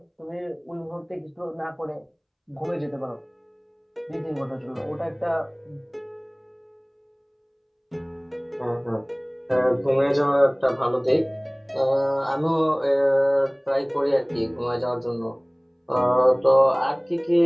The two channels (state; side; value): identical; both; correlation 1.00